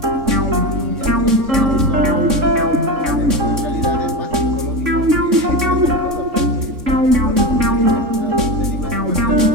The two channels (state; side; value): late; left; 3.5 ms